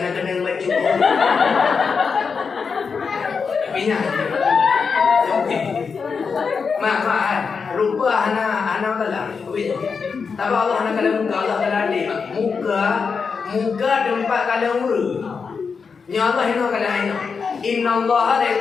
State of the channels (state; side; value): quieter; right; 5.5 dB